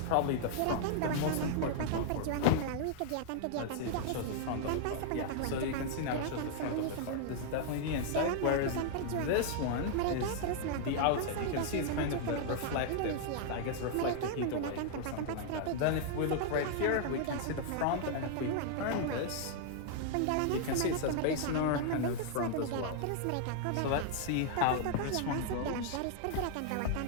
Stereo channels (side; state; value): both; different; correlation -0.01